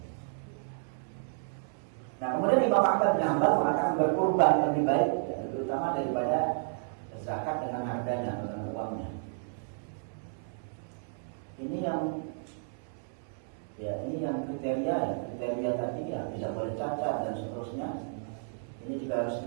Nah, kemudian Imam Ahmad bin Hanbal mengatakan berkurban lebih baik, ya, terutama daripada zakat dengan harganya atau dengan uangnya. Ini yang kriteria tadi ya, tidak boleh cacat dan seterusnya. Ini juga harus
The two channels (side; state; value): left; silent; 57 dB below the other